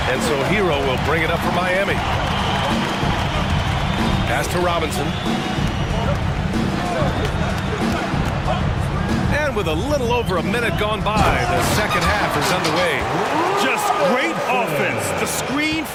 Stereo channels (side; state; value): both; identical; correlation 1.00